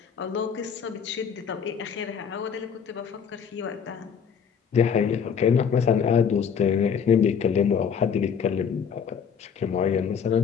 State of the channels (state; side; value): quieter; right; 7.1 dB